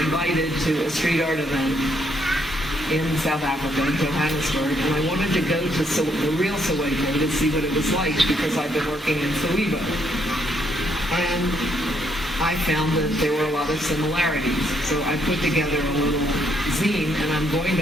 to a street art event in South Africa, in Johannesburg, and I wanted to go to the real Soweto to see what it was like because I've been working in Soweto. And I found that there were a lot of similarities. So I put together a little zine, and I'm going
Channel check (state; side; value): normal; both; correlation 0.73